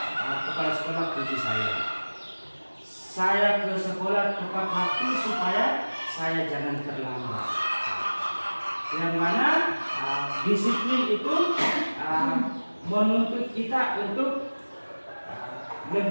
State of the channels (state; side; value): inverted; both; correlation -1.00